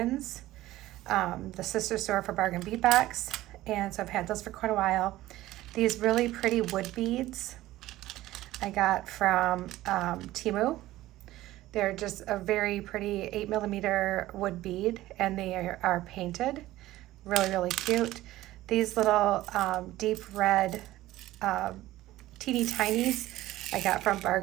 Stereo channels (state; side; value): quieter; left; 16.1 dB